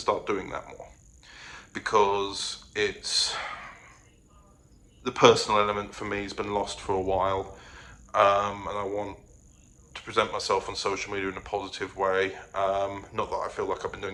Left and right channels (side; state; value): both; identical; correlation 1.00